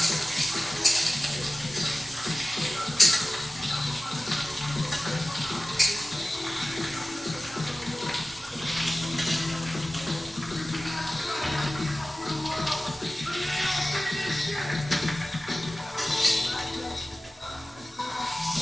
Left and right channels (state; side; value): normal; both; correlation 0.96